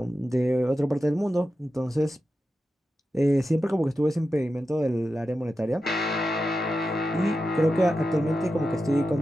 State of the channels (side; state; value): both; normal; correlation 0.91